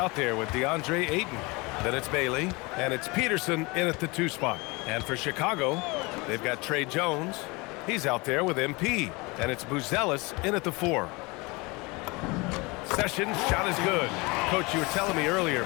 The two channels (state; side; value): quieter; right; 25.7 dB